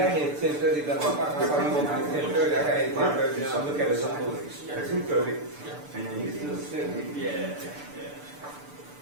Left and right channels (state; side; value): late; left; 6.8 ms